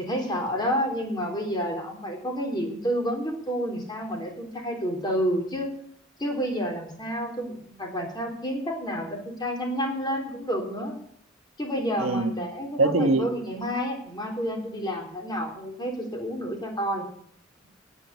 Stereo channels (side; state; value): both; normal; correlation 0.34